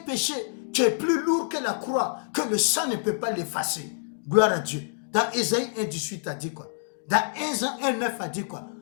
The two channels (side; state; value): right; silent; digital silence